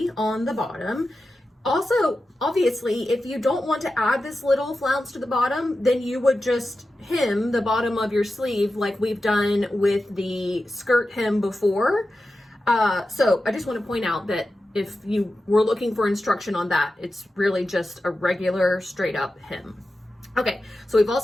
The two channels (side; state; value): both; normal; correlation 0.92